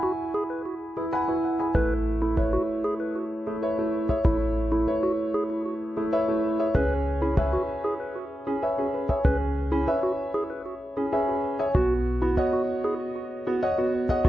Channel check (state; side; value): normal; both; correlation 0.90